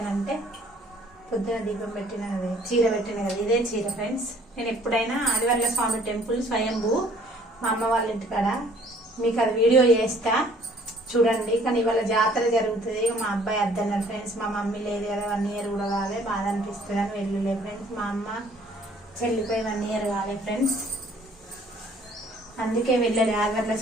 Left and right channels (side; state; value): both; normal; correlation 0.57